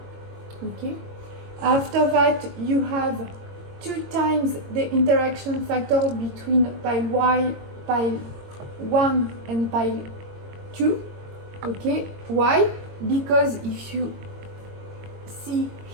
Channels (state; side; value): late; left; 22 ms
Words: Okay, after that you have 2 times the interaction factor between pile 1 and pile 2. Okay, why? Because if you see